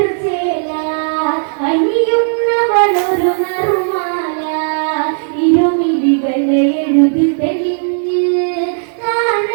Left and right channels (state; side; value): silent; left; digital silence